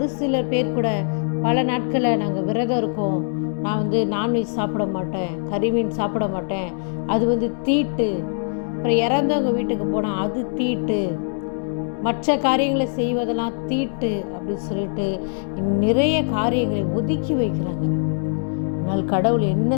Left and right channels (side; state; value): right; silent; digital silence